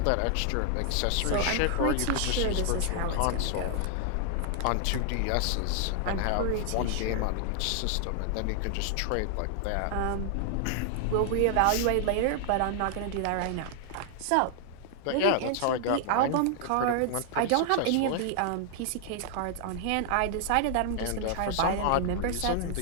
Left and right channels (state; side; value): different; both; correlation 0.00